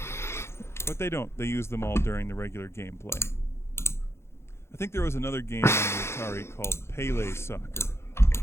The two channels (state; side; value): late; right; 0.13 ms